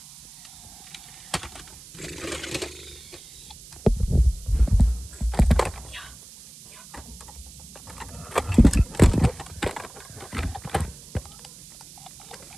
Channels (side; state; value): right; noise; hiss, 18 dB below the sound